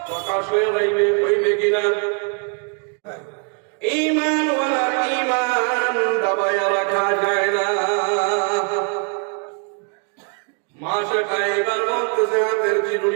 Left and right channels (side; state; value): left; quieter; 38.9 dB